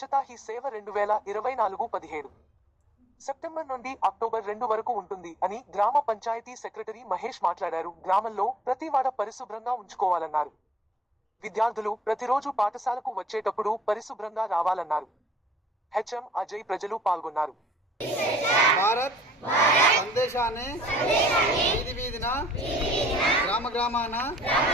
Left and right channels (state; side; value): normal; both; correlation 0.59